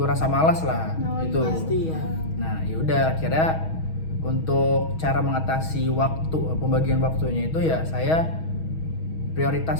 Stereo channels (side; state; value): right; late; 6.3 ms